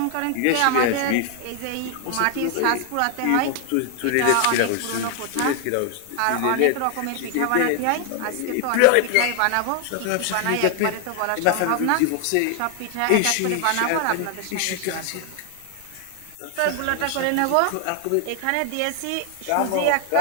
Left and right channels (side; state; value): both; different; correlation 0.00